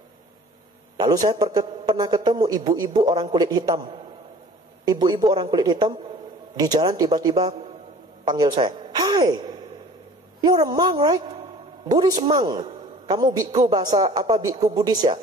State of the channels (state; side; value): normal; both; correlation 0.47